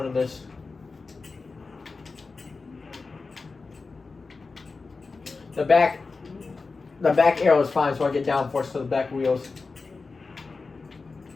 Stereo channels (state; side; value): quieter; right; 4.1 dB